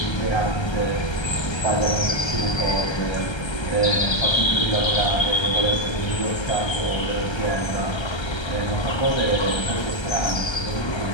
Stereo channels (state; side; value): late; right; 1.3 ms